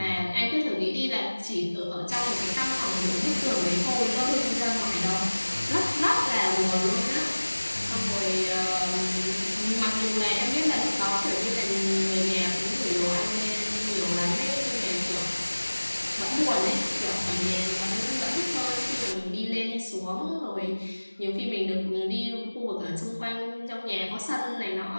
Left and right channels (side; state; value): both; inverted; correlation -1.00